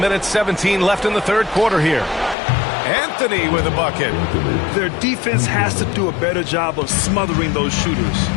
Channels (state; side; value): drops out; right; at 2.4 s